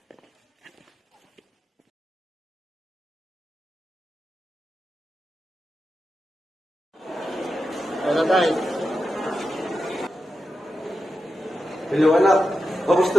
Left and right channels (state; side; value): normal; both; correlation 0.89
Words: Tara tayo. Hello anak,